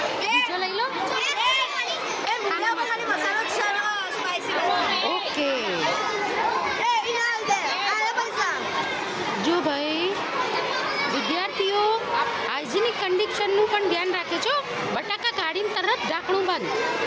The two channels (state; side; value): identical; both; correlation 1.00